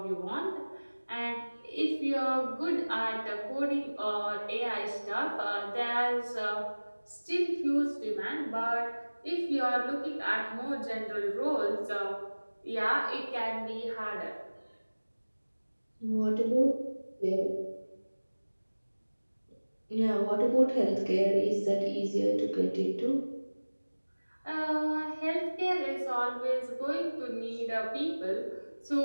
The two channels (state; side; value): inverted; both; correlation -1.00